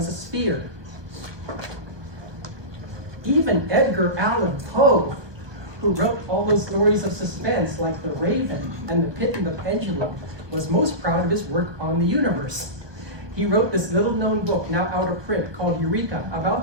a sphere. Even Edgar Allan Poe, who wrote all those stories of suspense like The Raven and The Pit and the Pendulum, was most proud of his work on the universe. He wrote this little-known book, now out of print, called Eureka,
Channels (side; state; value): left; late; 1.1 ms